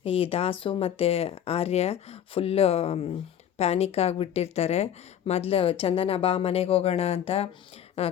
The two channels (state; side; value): quieter; right; 9.7 dB